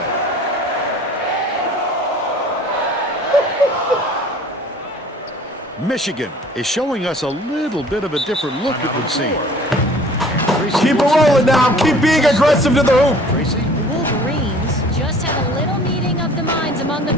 Michigan is showing us a little bit of a different look, it would seem. Keep it rolling now. Keep being aggressive to the hoop. Tracy. The Wolverines just had a little meeting of the minds among the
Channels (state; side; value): normal; both; correlation 0.50